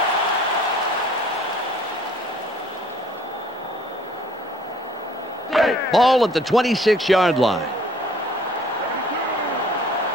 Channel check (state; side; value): normal; both; correlation 0.55